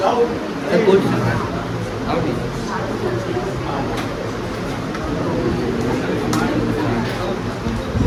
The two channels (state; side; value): identical; both; correlation 1.00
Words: जाओ। क्वेश्चन आओ ठीक।